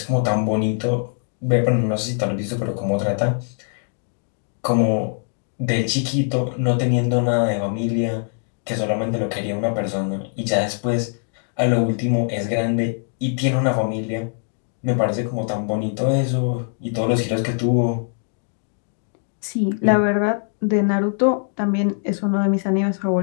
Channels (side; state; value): right; silent; 64 dB below the other